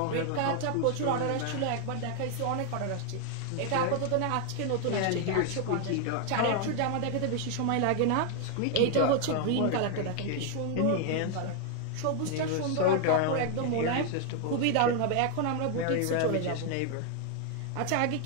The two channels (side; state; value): both; different; correlation 0.00